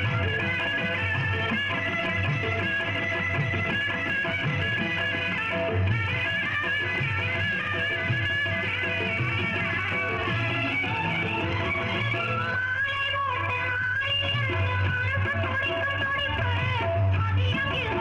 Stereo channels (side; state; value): both; identical; correlation 1.00